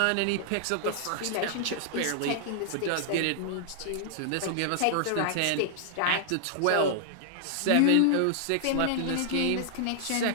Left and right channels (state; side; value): different; both; correlation -0.01